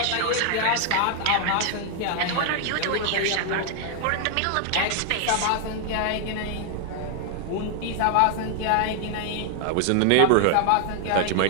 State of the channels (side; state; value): both; different; correlation 0.00